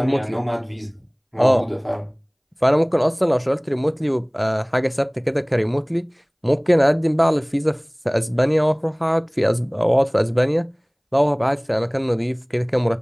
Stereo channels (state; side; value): identical; both; correlation 1.00